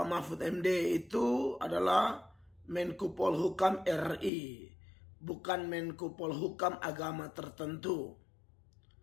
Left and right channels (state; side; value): drops out; right; at 4.3 s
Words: Mahfud MD itu adalah Menko Polhukam RI, bukan Menko Polhukam agama tertentu.